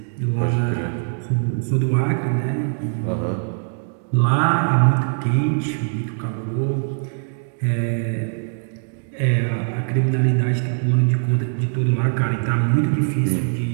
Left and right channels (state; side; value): silent; left; digital silence